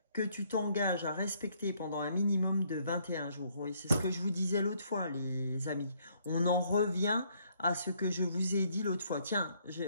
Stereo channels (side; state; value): both; inverted; correlation -0.68